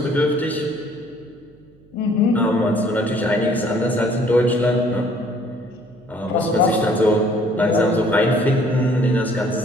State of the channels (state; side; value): noise; right; hum, 29 dB below the sound